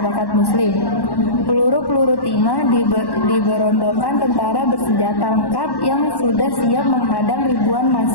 Muslim. Peluru-peluru timah diberondongkan tentara bersenjata lengkap yang sudah siap menghadang ribuan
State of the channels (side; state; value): right; late; 1.1 ms